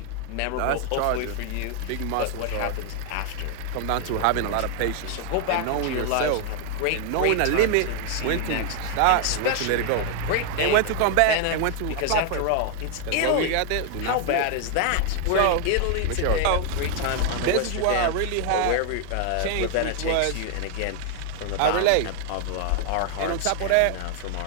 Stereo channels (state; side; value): different; both; correlation 0.00